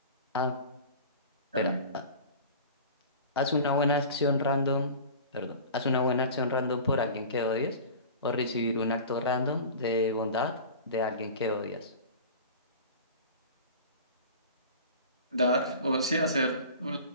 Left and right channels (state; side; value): inverted; both; correlation -0.38